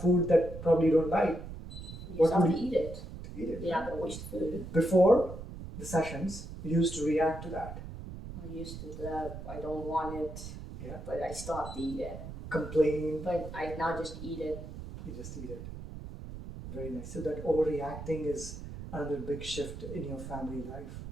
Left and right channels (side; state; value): right; noise; rumble, 10 dB below the sound